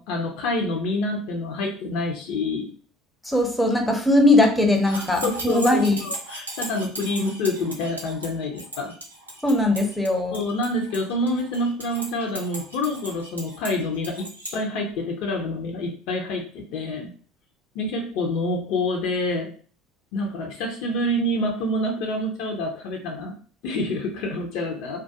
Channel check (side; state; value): both; normal; correlation 0.45